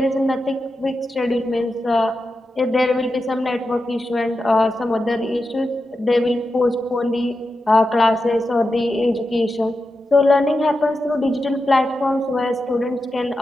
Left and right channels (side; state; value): both; normal; correlation 0.89